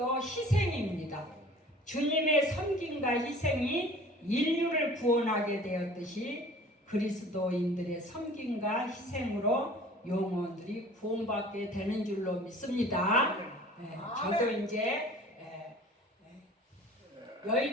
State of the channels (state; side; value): normal; both; correlation 0.46